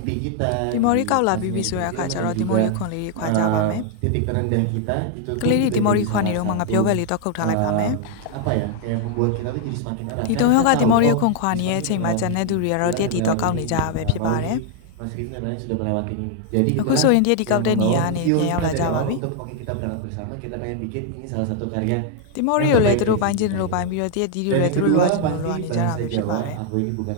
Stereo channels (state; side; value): different; both; correlation 0.00